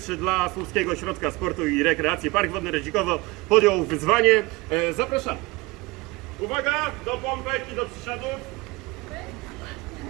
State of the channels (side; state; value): left; quieter; 23.2 dB